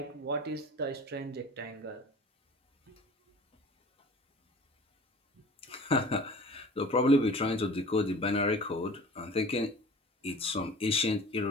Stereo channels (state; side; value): normal; both; correlation 0.43